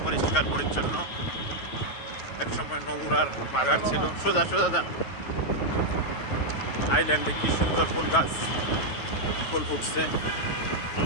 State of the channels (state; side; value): late; right; 9.2 ms